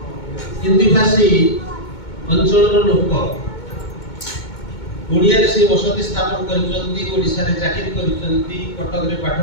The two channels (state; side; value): late; right; 2.2 ms